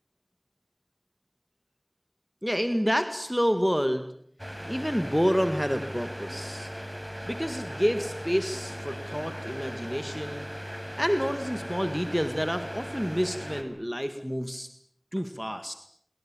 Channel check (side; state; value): both; identical; correlation 1.00